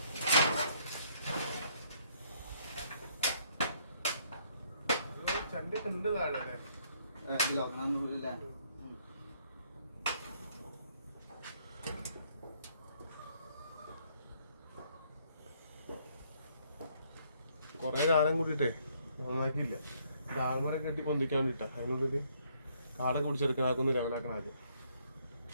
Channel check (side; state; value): both; inverted; correlation -0.68